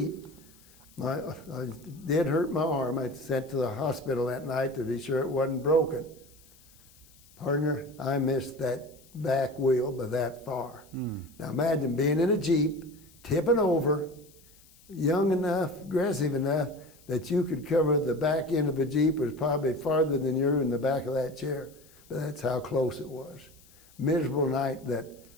I did hurt my arm. I sent to the hospital that night to be sure it wasn't broken. Partner, I missed that back wheel by that far. Now imagine being in a Jeep, tipping over, young enough, aggressive enough, that you could cover the back end of a Jeep was probably farther than you're in the back of that chair. But that's how close it was. Miserable night, that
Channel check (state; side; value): noise; left; hiss, 27 dB below the sound